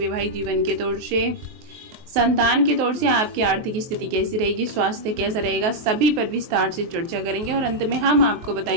जीवन के तौर से, संतान के तौर से आपकी आर्थिक स्थिति कैसी रहेगी, स्वास्थ्य कैसा रहेगा, सभी पर विस्तार से चर्चा करेंगे और अंत में हम आपको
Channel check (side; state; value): left; late; 23 ms